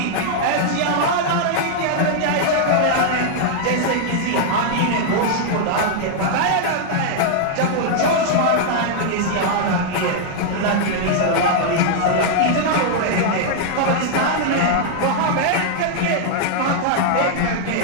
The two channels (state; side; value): different; both; correlation -0.01